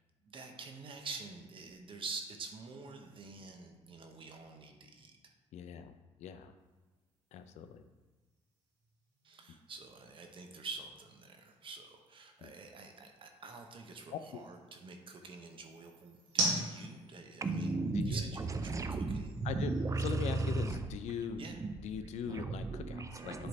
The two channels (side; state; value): both; normal; correlation 0.57